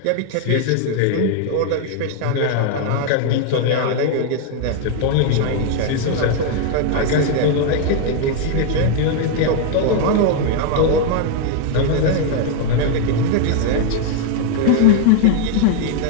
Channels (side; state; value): both; different; correlation 0.00